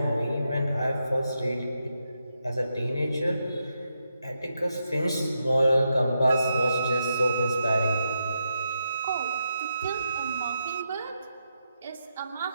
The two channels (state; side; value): inverted; both; correlation -0.84